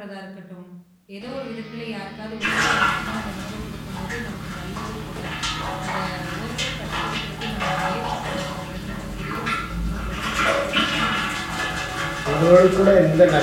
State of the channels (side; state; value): both; identical; correlation 1.00